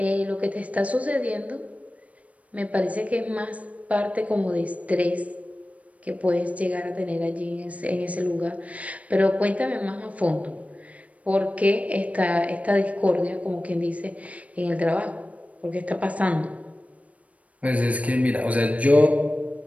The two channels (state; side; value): late; left; 0.067 ms